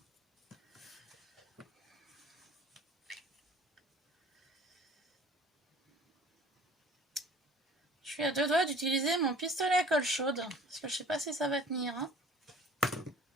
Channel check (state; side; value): normal; both; correlation 0.48